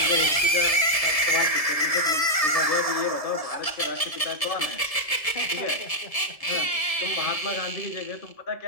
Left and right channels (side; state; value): right; late; 1.7 ms